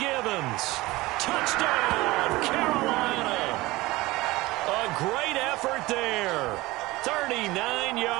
Touchdown, Carolina. A great effort there. 39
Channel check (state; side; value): quieter; left; 20.0 dB